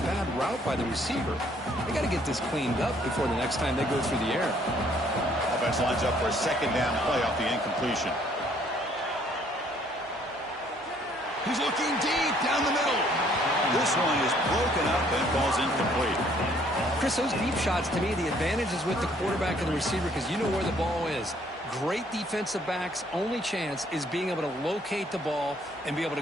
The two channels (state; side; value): normal; both; correlation 0.63